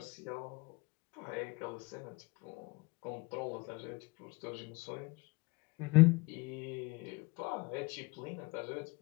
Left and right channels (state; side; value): quieter; right; 25.3 dB